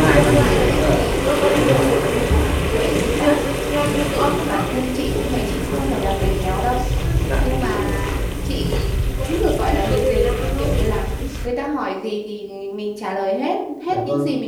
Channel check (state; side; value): identical; both; correlation 1.00